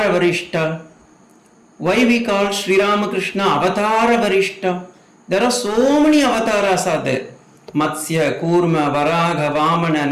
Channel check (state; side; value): identical; both; correlation 1.00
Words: வரிஷ்டா? Why we call Sri Ramakrishna Avatara Varishta? There are so many avatars are there. Matsya, Kurma, Varaga, Vamana,